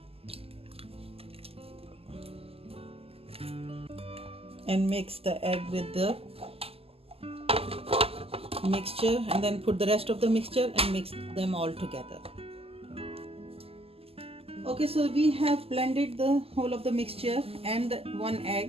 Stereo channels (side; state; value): left; late; 0.28 ms